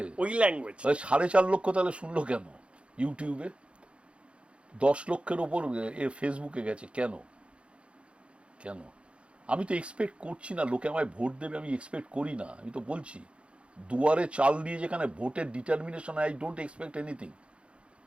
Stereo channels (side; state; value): left; late; 0.059 ms